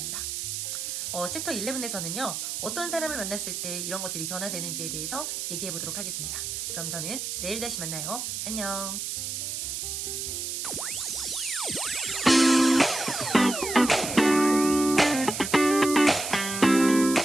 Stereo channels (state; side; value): noise; right; hiss, 4 dB below the sound